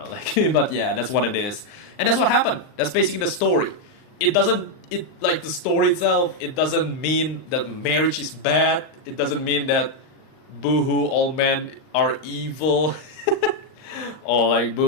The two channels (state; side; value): late; right; 39 ms